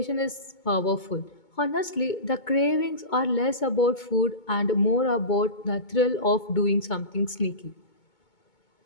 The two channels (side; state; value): right; late; 2.2 ms